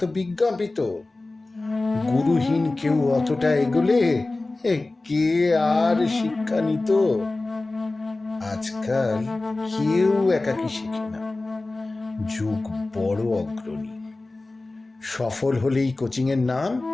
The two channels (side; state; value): right; quieter; 3.1 dB